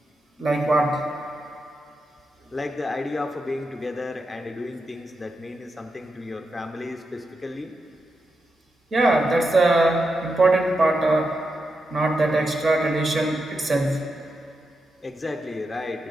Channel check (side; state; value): both; normal; correlation 0.87